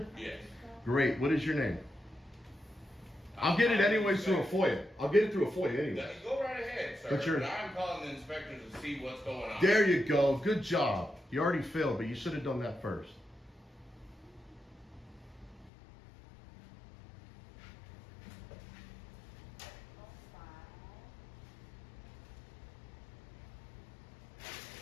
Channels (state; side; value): drops out; right; at 15.7 s